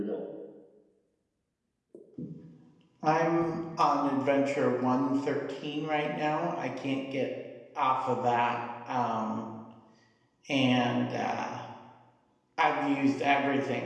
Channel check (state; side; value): identical; both; correlation 1.00